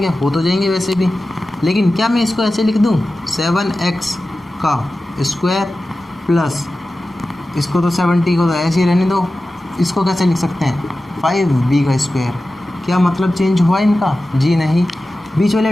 हो तो जाएंगे वैसे भी। लेकिन क्या मैं इसको ऐसे लिख दूँ 7x का स्क्वायर प्लस इसको तो 70 को तो ऐसे ही रहने दो, इसको कैसे लिख सकते हैं 5b का स्क्वायर। क्या मतलब चेंज हुआ इनका? जी नहीं। बीच वाले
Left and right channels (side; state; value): both; normal; correlation 0.95